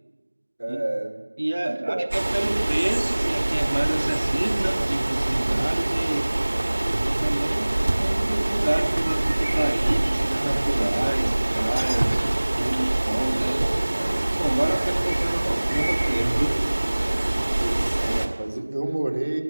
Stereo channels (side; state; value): both; inverted; correlation -1.00